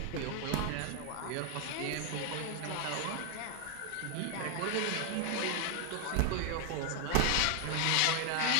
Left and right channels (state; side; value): different; both; correlation 0.00